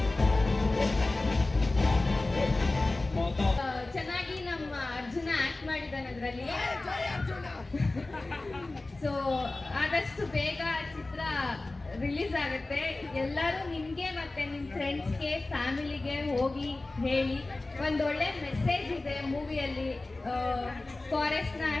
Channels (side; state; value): right; quieter; 3.1 dB